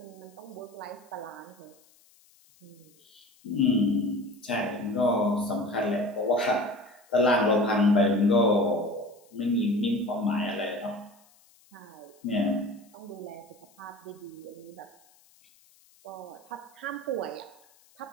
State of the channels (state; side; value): noise; left; hiss, 30 dB below the sound